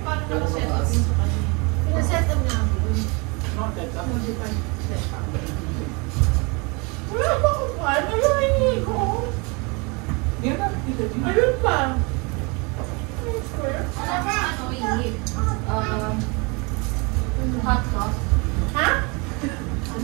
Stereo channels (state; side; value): quieter; left; 29.6 dB